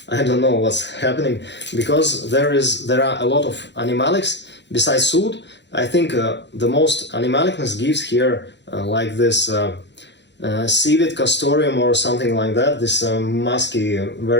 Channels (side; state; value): right; late; 0.52 ms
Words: I don't know what's happening, because there are a lot of animalics besides Oudh. I think the most animalicness gives here like this civet castoreum or something like that, this musky,